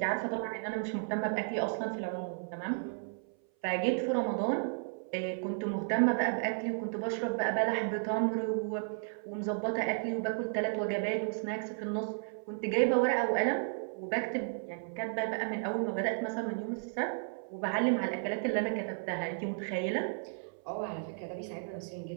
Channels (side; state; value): left; silent; 55 dB below the other